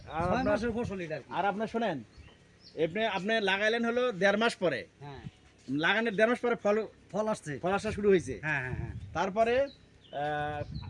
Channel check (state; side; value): identical; both; correlation 1.00